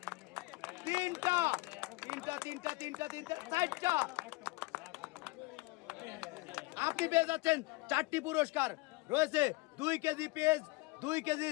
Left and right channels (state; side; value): quieter; right; 23.4 dB